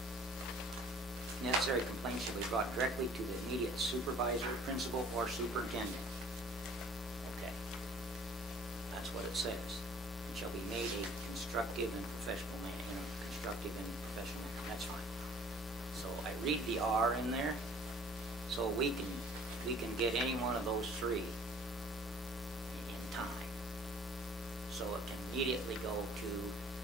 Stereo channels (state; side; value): normal; both; correlation 0.52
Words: Necessary complaints shall be brought directly to the immediate supervisor, principal, or superintendent. Okay. That's what it says. And shall be made a constructive and professional manner, constructive and professional manner. That's fine. So I read the R in there, so we can get any one of those three in time. So it can immediately go to